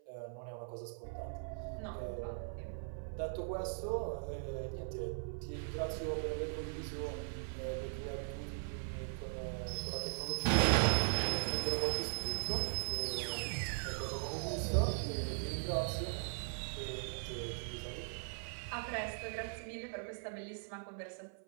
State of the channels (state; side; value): silent; left; 51 dB below the other